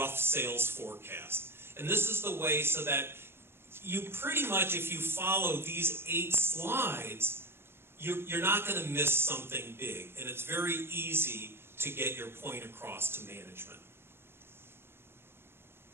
sales forecast. And this is the way so that you pretty much, if you follow these 8 slides, you're not going to miss something big. And it's very easy to get your point across to management.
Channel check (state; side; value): late; left; 0.11 ms